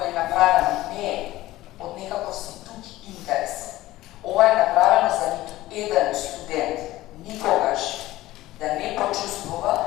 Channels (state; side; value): quieter; right; 16.7 dB